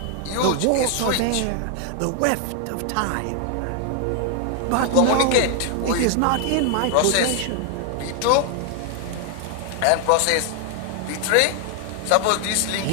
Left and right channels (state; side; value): different; both; correlation 0.00